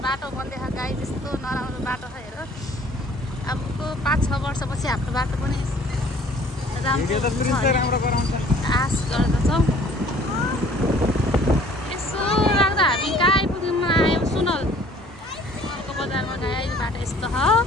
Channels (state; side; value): normal; both; correlation 0.54